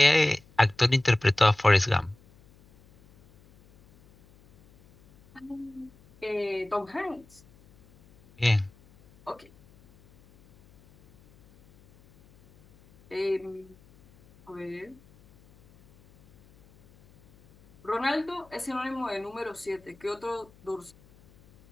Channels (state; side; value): noise; left; hum, 28 dB below the sound